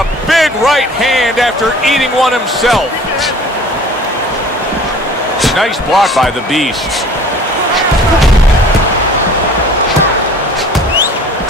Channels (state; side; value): normal; both; correlation 0.47